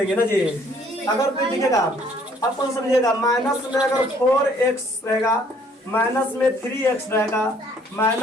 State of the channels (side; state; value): both; normal; correlation 0.61